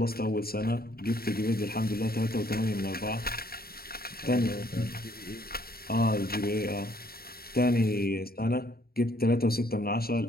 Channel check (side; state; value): right; late; 0.44 ms